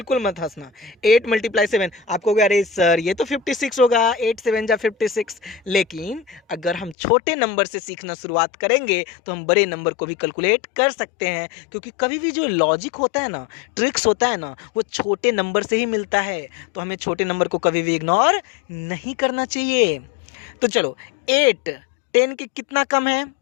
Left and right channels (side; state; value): right; drops out; at 7.0 s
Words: मत हंसना। 8 × 7 आप कहोगे अरे सर ये तो 56 होगा, 8 7 जा 56। लेकिन अगर हम छोटे नंबर से सीखना शुरुआत करेंगे तो हम बड़े नंबर को भी कैलकुलेट कर सकते हैं, क्योंकि कभी भी जो लॉजिक होता है ना, ट्रिक्स होता है ना, वो छोटे नंबर से ही मिलता है। तो हमें छोटे नंबर को कभी भी इग्नोर नहीं करना चाहिए। तो चलो 8 10 के कितना कम है,